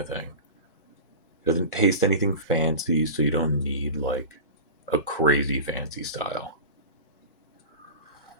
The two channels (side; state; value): both; inverted; correlation -0.31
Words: thing. Doesn't taste anything fancy, so you don't need like a crazy fancy style.